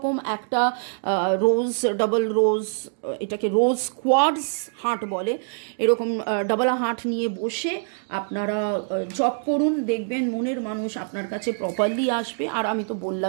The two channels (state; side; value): silent; left; digital silence